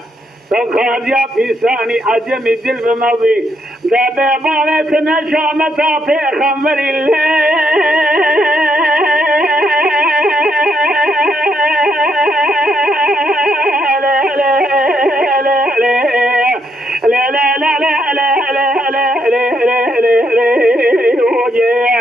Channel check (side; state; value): both; normal; correlation 0.76